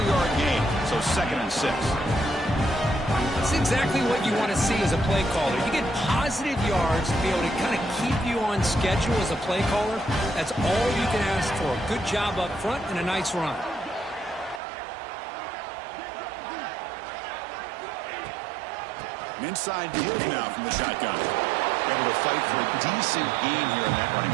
gain, so 2nd and 6. That's exactly what you want to see as a play caller. You get positive yards to be able to kind of keep you on schedule as a play caller. That's all you can ask for. A good job up front and a nice run. An inside give now from the shotgun. Able to fight for a decent gain here in that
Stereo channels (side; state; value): left; drops out; at 14.6 s